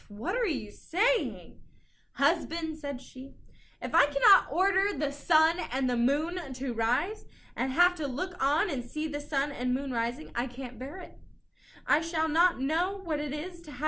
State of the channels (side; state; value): both; identical; correlation 1.00